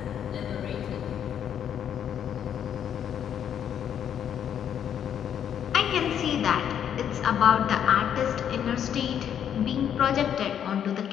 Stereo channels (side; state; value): right; quieter; 9.1 dB